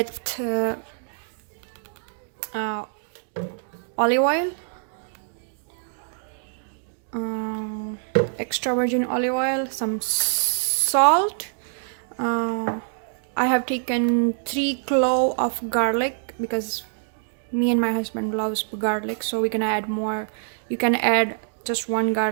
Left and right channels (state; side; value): silent; left; digital silence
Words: olive oil, extra virgin olive oil, some salt. I have taken 3 cloves of garlic because me and my husband loves garlic, so we're gonna add more. You can add just 1